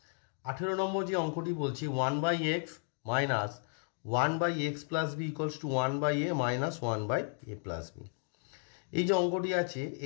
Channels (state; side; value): silent; right; 55 dB below the other